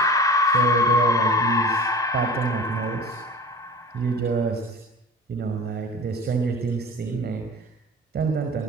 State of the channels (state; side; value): normal; both; correlation 0.37